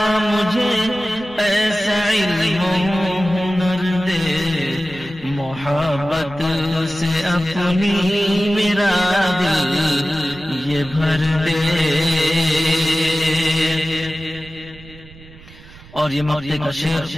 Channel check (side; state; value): right; noise; rumble, 21 dB below the sound